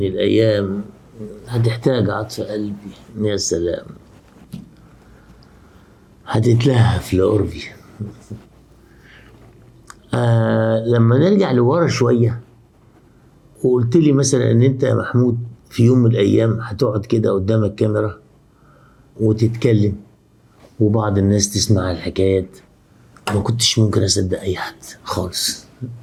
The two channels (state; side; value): identical; both; correlation 1.00